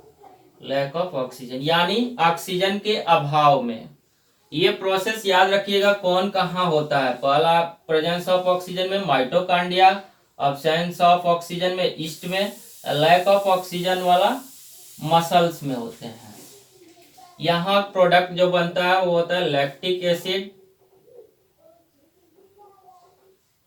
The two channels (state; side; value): identical; both; correlation 1.00